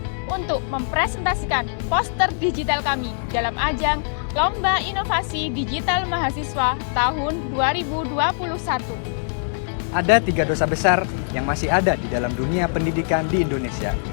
untuk mempresentasikan poster digital kami dalam ajang Lomba Inovasi Digital Mahasiswa tahun 2021. Ada 3 dosa besar yang masih ada di dalam dunia pendidikan di Indonesia,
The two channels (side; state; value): right; silent; digital silence